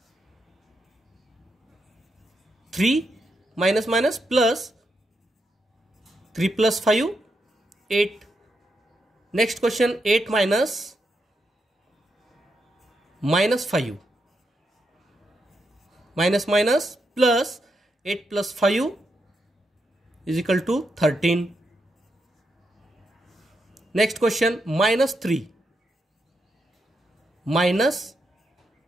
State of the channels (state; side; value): normal; both; correlation 0.83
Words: 3 minus minus plus 3 + 5 8. Next question, 8 minus -5, minus minus plus 8 + 5 = 13. Next question, -3 minus